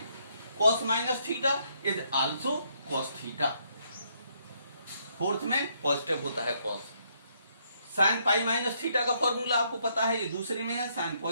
Cos minus theta is also cos theta, 4th में पॉजिटिव होता है cos. Sign pi minus theta का फॉर्मूला आपको पता है, ये दूसरे में है, साइन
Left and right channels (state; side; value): inverted; both; correlation -0.72